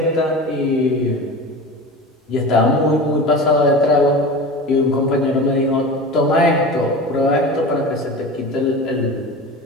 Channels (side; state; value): both; normal; correlation 0.31